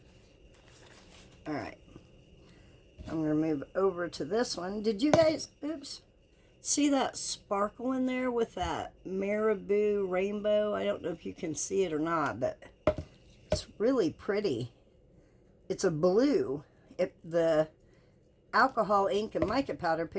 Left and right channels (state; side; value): identical; both; correlation 1.00